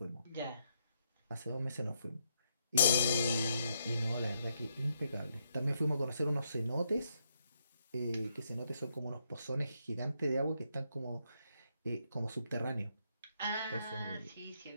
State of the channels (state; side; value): inverted; both; correlation -0.78